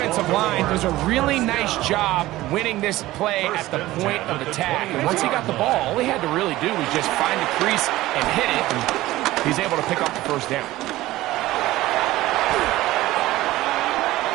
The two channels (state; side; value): quieter; left; 16.9 dB